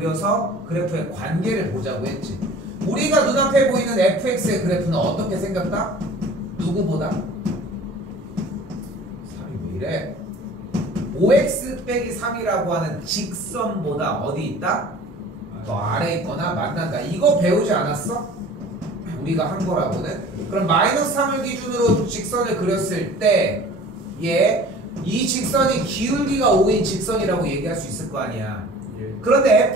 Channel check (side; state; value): both; normal; correlation 0.45